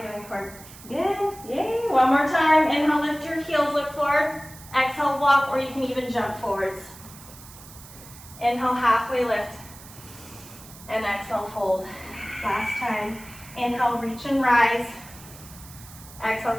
doing, Cord? Good, yay. One more time. Inhale, lift your heels, look forward. Exhale, walk, or you can even jump forwards. Inhale, halfway lift. And exhale, fold. Last time. Inhale, reach and rise.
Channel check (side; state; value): right; noise; hiss, 18 dB below the sound